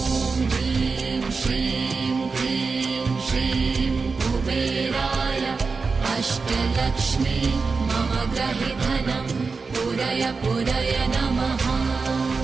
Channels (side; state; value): left; quieter; 4.5 dB